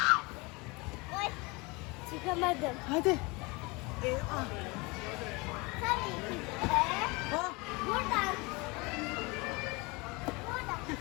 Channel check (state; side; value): quieter; right; 26.2 dB